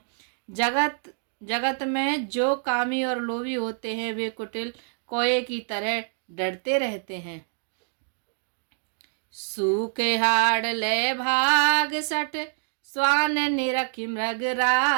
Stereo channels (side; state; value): left; silent; digital silence